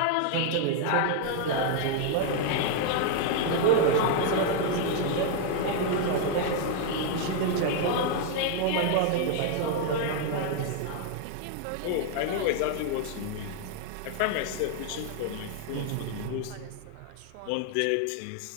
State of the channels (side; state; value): both; different; correlation 0.00